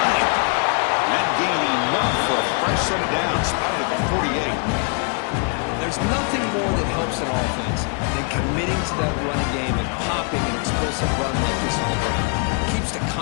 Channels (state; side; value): quieter; right; 37.3 dB